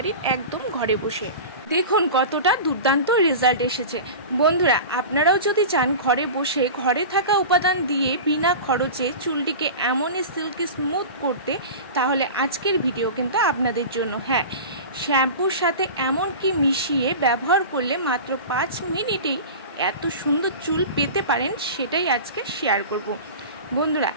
একদম ঘরে বসে। দেখুন কতটা দুর্দান্ত রেজাল্ট এসেছে। বন্ধুরা, আপনারাও যদি চান ঘরে বসে ঘরে থাকা উপাদান দিয়ে বিনা খরচে চুলটিকে এমনই সিল্কি স্মুথ করতে, তাহলে আজকের ভিডিও কিন্তু আপনাদের জন্য। হ্যাঁ, শ্যাম্পুর সাথে এমন কি মিশিয়ে ব্যবহার করলে মাত্র 5 মিনিটেই এত সুন্দর চুল পেতে পারেন, সেটাই আজকে শেয়ার করব। বন্ধুরা,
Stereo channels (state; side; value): inverted; both; correlation -0.32